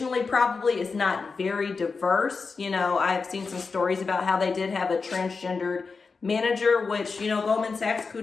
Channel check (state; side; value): quieter; right; 4.7 dB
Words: probably is not very diverse. You know, I've seen some stories about how they did have a transgendered manager, which, you know, Goldman Sachs,